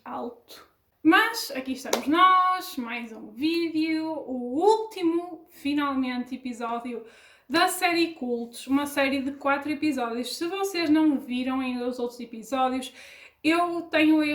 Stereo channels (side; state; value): both; identical; correlation 1.00